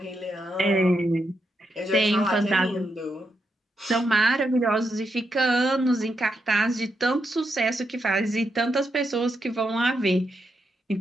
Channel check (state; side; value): normal; both; correlation 0.83